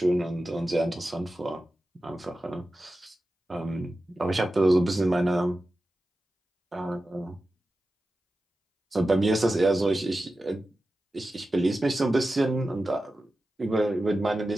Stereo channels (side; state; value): both; normal; correlation 0.93